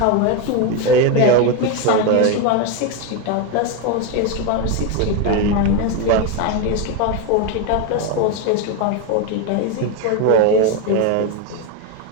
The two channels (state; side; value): different; both; correlation 0.03